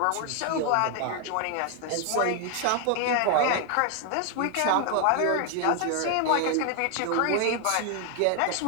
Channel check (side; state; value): both; different; correlation 0.00